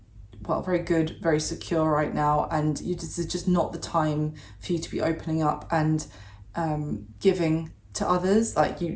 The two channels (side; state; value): both; identical; correlation 1.00